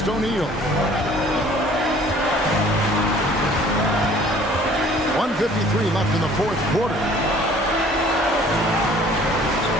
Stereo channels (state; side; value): normal; both; correlation 0.53